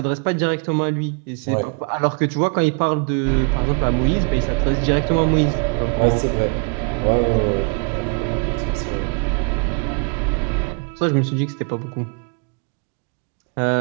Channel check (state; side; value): quieter; left; 37.3 dB